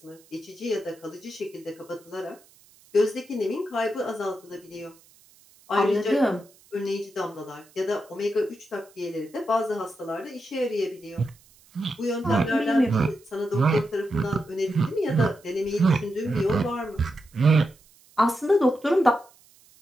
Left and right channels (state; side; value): noise; right; hiss, 28 dB below the sound